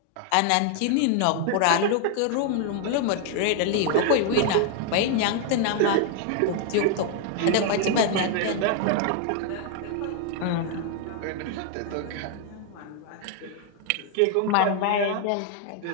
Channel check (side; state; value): both; different; correlation 0.00